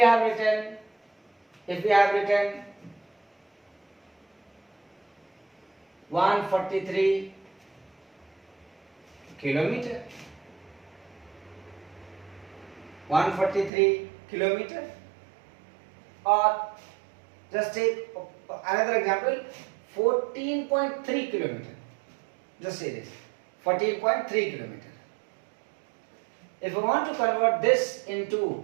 written 143 kilometer, 143 kilometer, or just take another example, 14.3 kilometer. Just say this, 14.3 kilometer. If we want to convert this into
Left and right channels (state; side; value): drops out; left; at 13.7 s